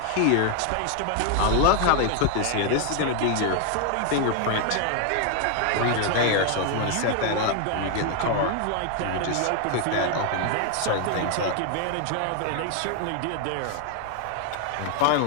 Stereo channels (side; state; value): both; different; correlation 0.00